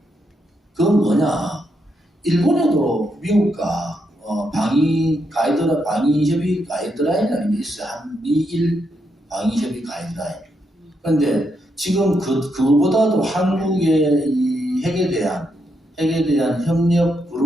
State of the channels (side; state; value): both; normal; correlation 0.80